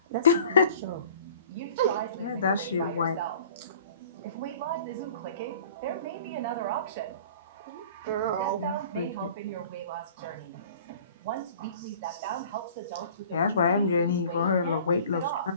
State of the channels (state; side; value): inverted; both; correlation -0.48